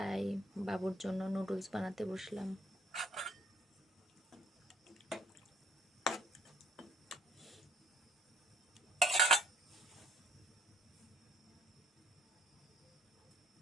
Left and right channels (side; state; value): both; normal; correlation 0.63